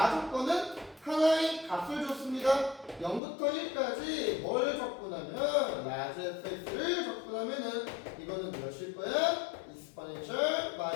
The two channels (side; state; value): right; drops out; at 3.2 s